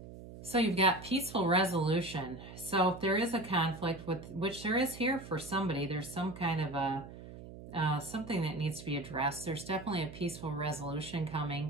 So you've got peaceful resolution. So if there is a conflict, which there is here for somebody, there's some kind of a something that needs to be addressed. There's definitely a peaceful resolution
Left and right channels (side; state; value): right; noise; hum, 14 dB below the sound